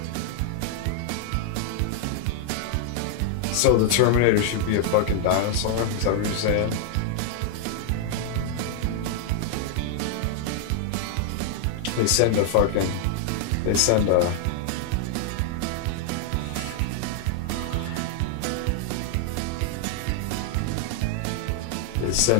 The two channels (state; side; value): different; both; correlation 0.00